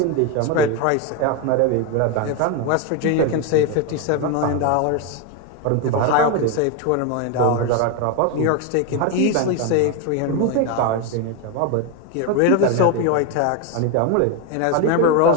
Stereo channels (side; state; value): both; different; correlation 0.02